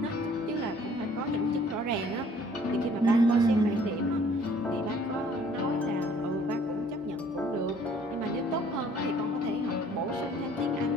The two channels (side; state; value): both; normal; correlation 0.57